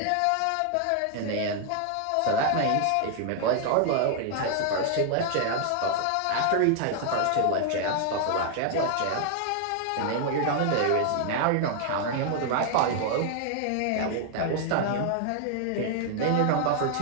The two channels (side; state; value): both; different; correlation 0.00